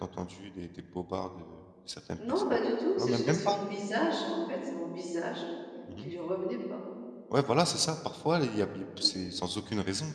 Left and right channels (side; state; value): both; identical; correlation 1.00